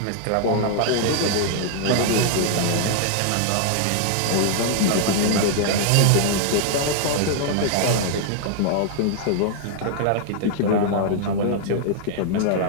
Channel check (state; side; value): different; both; correlation -0.01